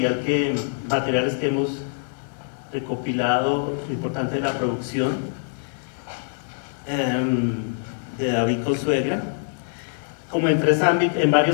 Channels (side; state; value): right; silent; digital silence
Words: materiales que hemos recopilado, lo importante de la producción de David Consuegra, como en